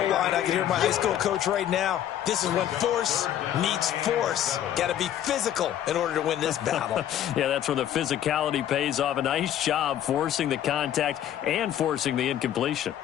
line. I can hear my high school coach right now. This is when force meets force. Got to be physical in order to win this battle. Yeah, that's where the physicality pays off. A nice job forcing the contact and forcing the incompletion.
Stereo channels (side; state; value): right; quieter; 11.0 dB